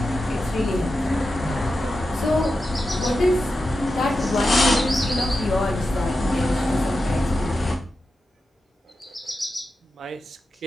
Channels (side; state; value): both; normal; correlation 0.90